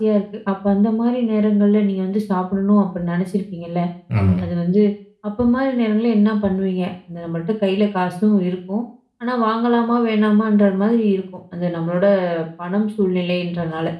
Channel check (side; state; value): both; identical; correlation 1.00